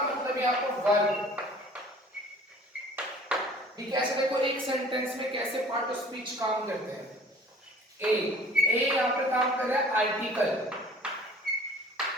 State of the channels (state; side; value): normal; both; correlation 0.49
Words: मतलब यहाँ पर वर्ब। ठीक है, ऐसे देखो एक सेंटेंस में कैसे पार्ट ऑफ स्पीच काम करते हैं। ए यहाँ पर काम कर रहा है आर्टिकल,